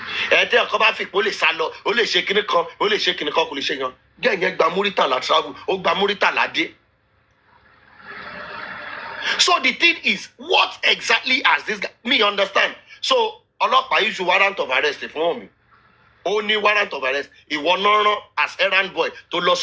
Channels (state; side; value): identical; both; correlation 1.00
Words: Ẹ̀ẹ́dẹ́ ọkọ bá fi pé ó lè sá lọ, ó lè ṣe kinní kan, ó lè ṣe kinní kan, kò lè ṣe yan. Gẹ́gẹ́ gba Muritala travel, ó gba Muritala dé. So the thing is, what exactly has this guy? Me understand. So ọlọ́pàá issue warrant of arrest fún mi. Ó ní warrant of arrest. Ìwọ náà rán as errand boy tó lọ